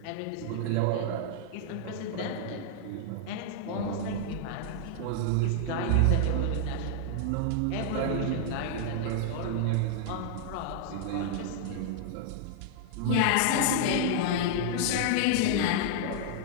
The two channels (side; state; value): both; different; correlation -0.01